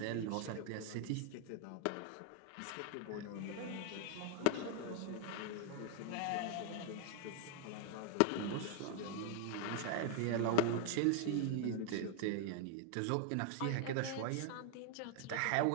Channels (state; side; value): different; both; correlation 0.00